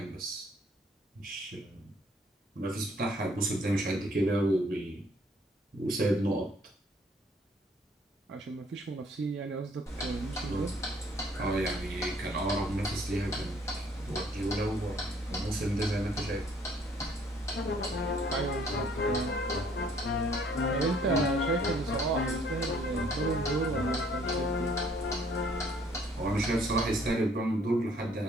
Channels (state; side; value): normal; both; correlation 0.61